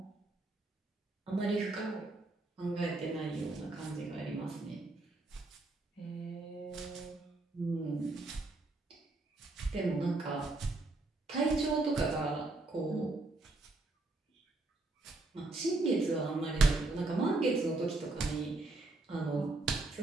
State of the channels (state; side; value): quieter; left; 3.1 dB